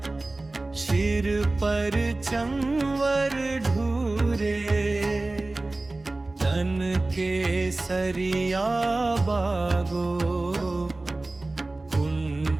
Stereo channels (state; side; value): quieter; left; 3.0 dB